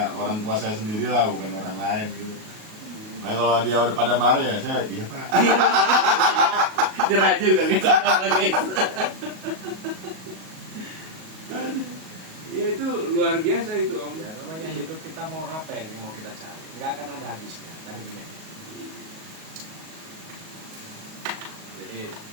orang tua saya sendiri lah, bukan orang lain gitu. Nah, kalau dia udah pada marah ya saya iya Pak. Jerah juga guys. Ya itu luar biasa itu Om. Ya namanya hidup kita mau apa yang mau kita cari, nggak akan ada habisnya kan ini. Jadi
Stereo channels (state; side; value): late; left; 38 ms